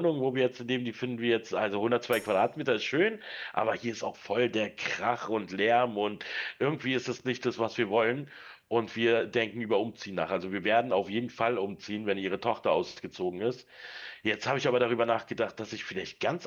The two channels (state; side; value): identical; both; correlation 1.00